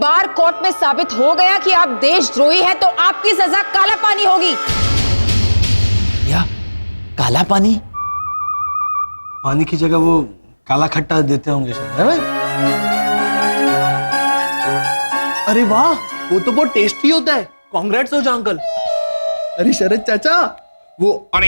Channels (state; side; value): inverted; both; correlation -1.00